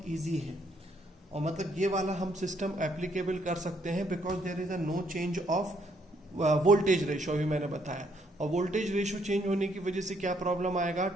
इजी है और मतलब ये वाला हम सिस्टम एप्लीकेबल कर सकते हैं because there is a no change of voltage ratio भी मैंने बताया। और वोल्टेज रेशो चेंज होने की वजह से क्या प्रॉब्लम आएगा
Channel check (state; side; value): normal; both; correlation 0.70